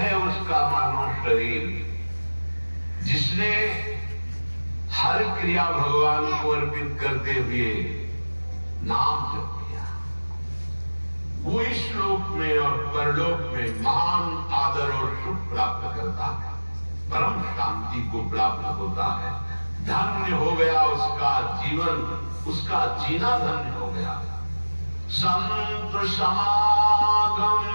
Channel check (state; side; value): inverted; both; correlation -1.00